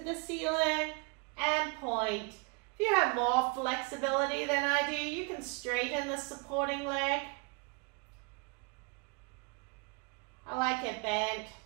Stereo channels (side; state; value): left; quieter; 31.2 dB